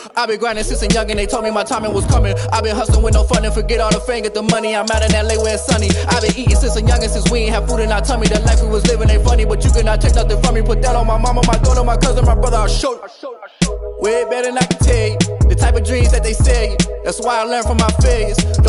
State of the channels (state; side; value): identical; both; correlation 1.00